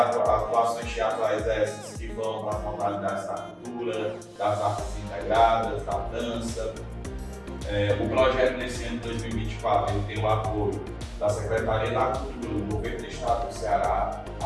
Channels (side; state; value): both; identical; correlation 1.00